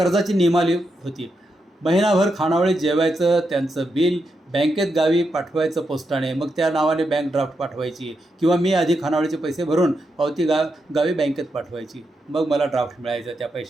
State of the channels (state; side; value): normal; both; correlation 0.84